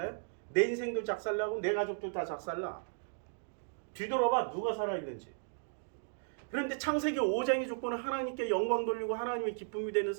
내 인생도 작살나고 내 가족도 다 작살나. 뒤돌아봐, 누가 살아있는지. 그런데 창세기 5장의 조건은 하나님께 영광 돌리고 하나님의 기쁨이 되는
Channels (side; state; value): left; silent; digital silence